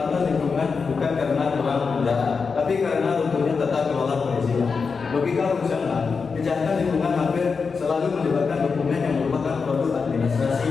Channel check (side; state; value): right; quieter; 5.1 dB